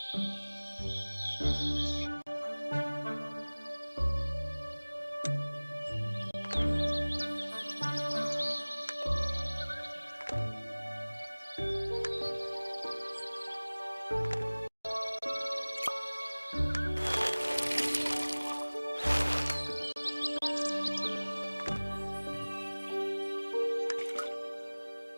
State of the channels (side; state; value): both; inverted; correlation -1.00